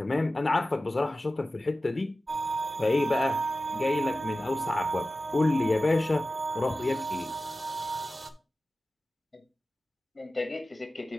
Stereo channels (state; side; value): normal; both; correlation 0.95